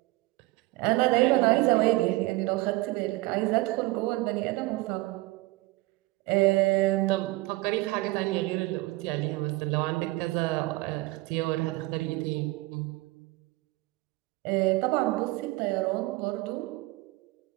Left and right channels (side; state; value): left; quieter; 20.7 dB